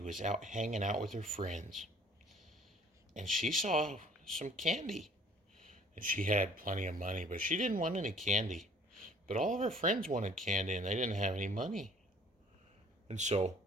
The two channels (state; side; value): normal; both; correlation 0.54